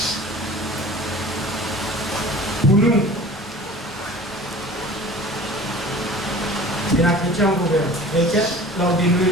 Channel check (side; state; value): both; normal; correlation 0.42